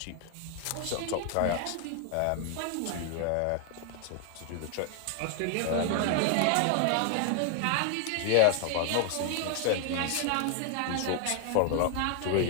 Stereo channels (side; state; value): both; different; correlation 0.00